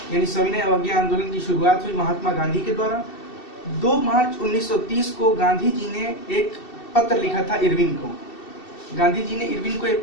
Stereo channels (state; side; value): late; right; 2.7 ms